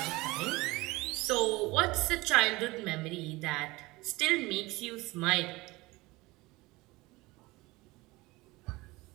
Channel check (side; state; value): left; quieter; 21.6 dB